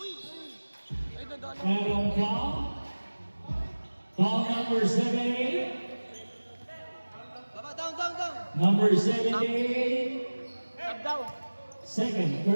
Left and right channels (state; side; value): inverted; both; correlation -1.00